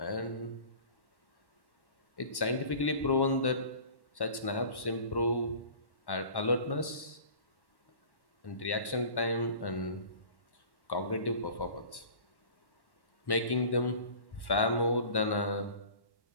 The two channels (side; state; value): right; late; 1.1 ms